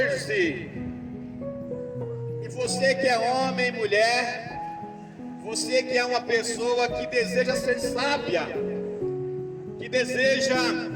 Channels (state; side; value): identical; both; correlation 1.00